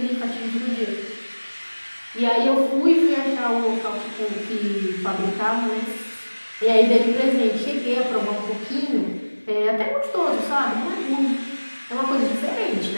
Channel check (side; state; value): both; inverted; correlation -1.00